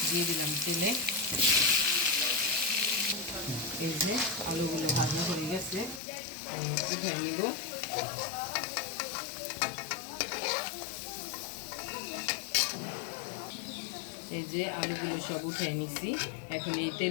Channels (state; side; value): drops out; right; at 6.0 s